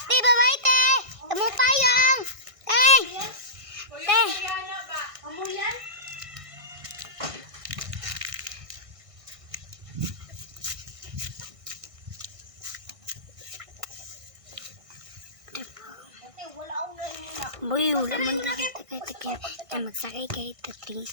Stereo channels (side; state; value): left; late; 1.6 ms